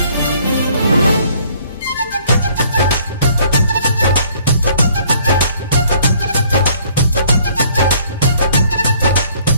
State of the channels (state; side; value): inverted; both; correlation -0.60